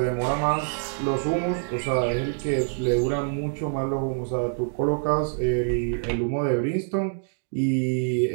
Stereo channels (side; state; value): left; silent; digital silence